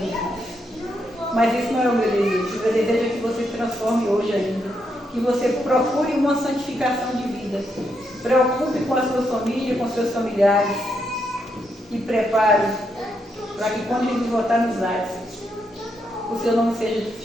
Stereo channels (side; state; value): both; normal; correlation 0.80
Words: Mas esse não é o meu desejo. O meu desejo é que você se transforme hoje ainda. Que você procure uma santificação de vida. Preocupe com a sua família, com seus familiares. E prepare para que quando Jesus voltar nos ares, o seu nome seja